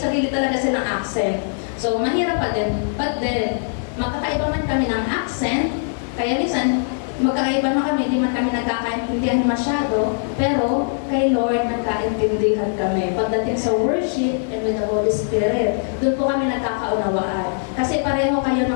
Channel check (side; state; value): right; silent; digital silence